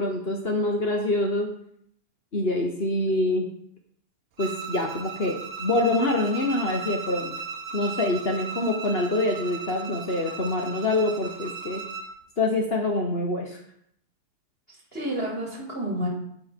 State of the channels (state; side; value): late; right; 2.8 ms